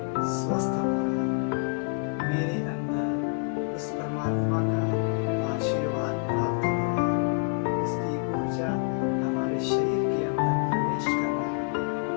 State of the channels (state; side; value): quieter; right; 36.7 dB